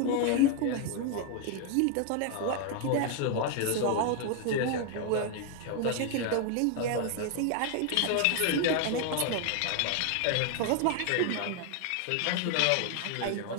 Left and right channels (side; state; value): both; different; correlation 0.01